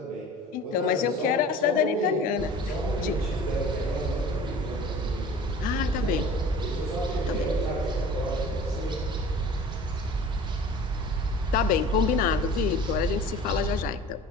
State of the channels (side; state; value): both; normal; correlation 0.42